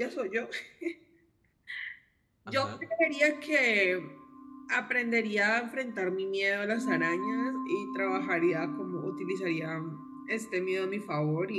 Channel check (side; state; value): both; identical; correlation 1.00